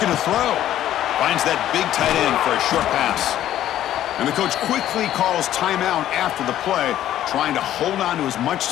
to throw. Finds that big tight end for a short pass. And the coach quickly calls timeout after the play, trying to hold on to as much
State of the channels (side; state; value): right; quieter; 12.2 dB